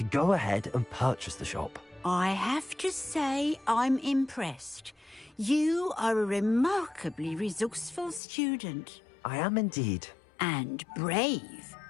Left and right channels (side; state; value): right; drops out; at 8.2 s